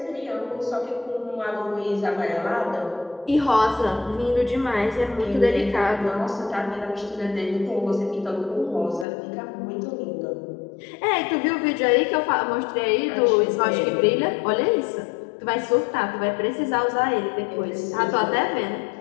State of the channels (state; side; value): drops out; right; at 9.1 s